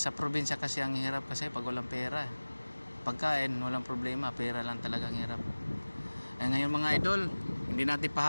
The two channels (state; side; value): inverted; both; correlation -1.00